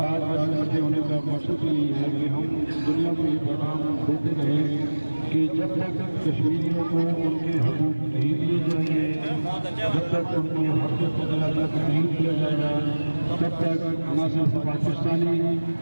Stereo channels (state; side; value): inverted; both; correlation -1.00